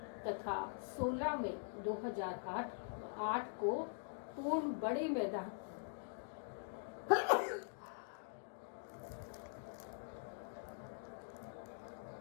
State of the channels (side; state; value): right; silent; digital silence